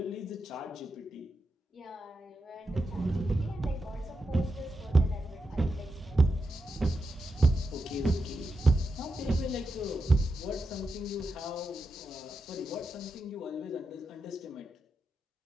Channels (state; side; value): normal; both; correlation 0.87